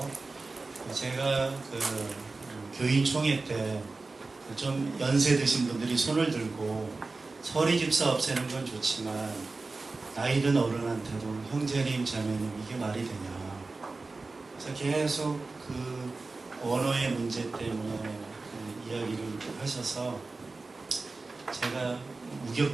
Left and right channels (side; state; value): left; quieter; 3.6 dB